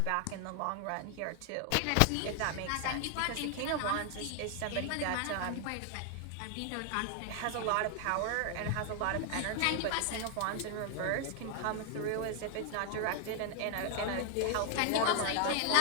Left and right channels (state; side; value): different; both; correlation 0.00